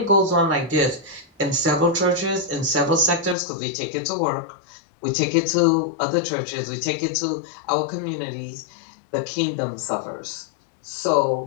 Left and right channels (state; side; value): drops out; right; at 3.4 s